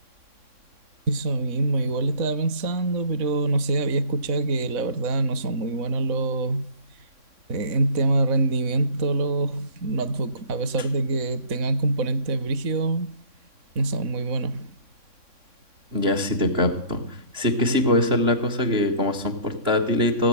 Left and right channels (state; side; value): late; left; 3.6 ms